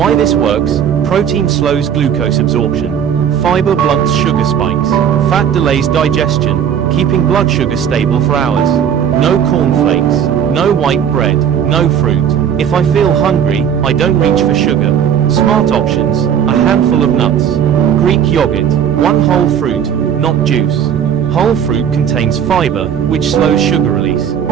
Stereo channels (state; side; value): quieter; left; 8.5 dB